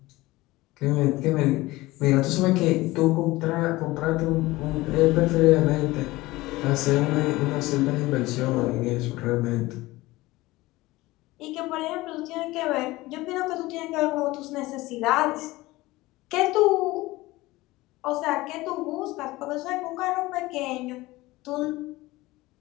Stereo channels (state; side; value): quieter; right; 19.5 dB